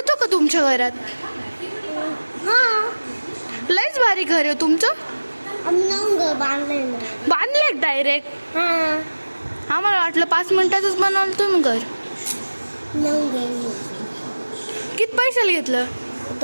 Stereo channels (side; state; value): both; inverted; correlation -1.00